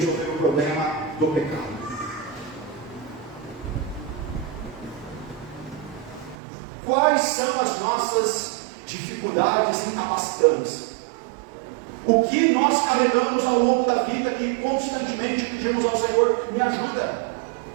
o problema do pecado. Quais são as nossas dificuldades incapacitantes? O que nós carregamos ao longo da vida que constantemente pedimos ao Senhor: me ajuda?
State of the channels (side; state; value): left; drops out; at 6.4 s